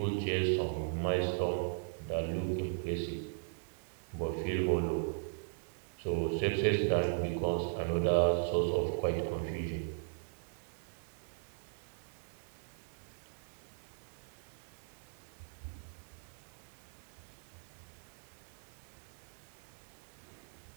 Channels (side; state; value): left; silent; digital silence